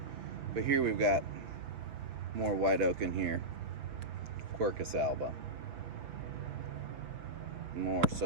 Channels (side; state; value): left; late; 5.9 ms